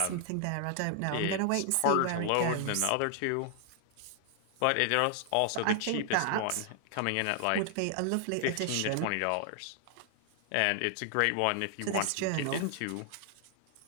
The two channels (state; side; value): different; both; correlation 0.00